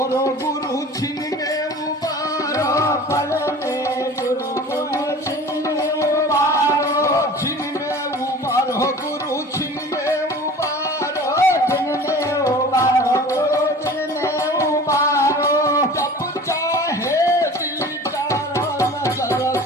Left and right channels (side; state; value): both; normal; correlation 0.41